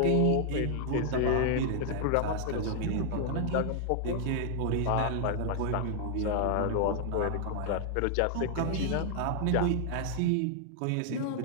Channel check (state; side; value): different; both; correlation 0.00